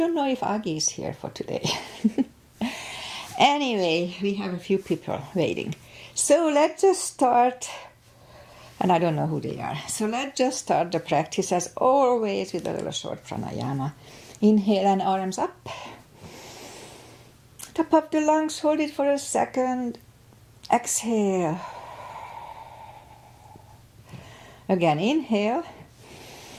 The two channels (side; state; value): both; identical; correlation 1.00